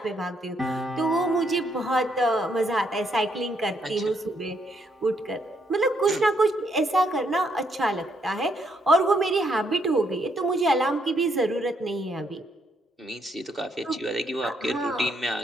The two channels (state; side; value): normal; both; correlation 0.73